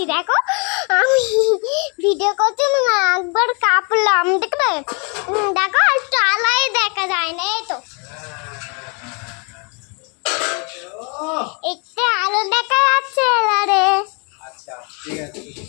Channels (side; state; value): right; quieter; 34.3 dB